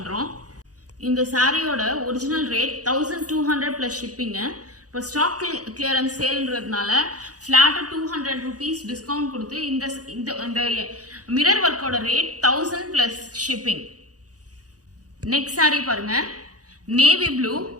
இந்த சாரியோட ஒரிஜினல் ரேட் 1200 பிளஸ் ஷிப்பிங்க. இப்போ ஸ்டாக் கிளியரன்ஸ் சேல்ன்றதுனால ஃபிளாட்டா 200 rupees டிஸ்கவுண்ட் கொடுத்து இந்த மிரர் ஒர்க்கோட rate 1000 plus shipping. Next sari பாருங்க, நேவி ப்ளூ,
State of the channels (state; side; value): late; left; 0.67 ms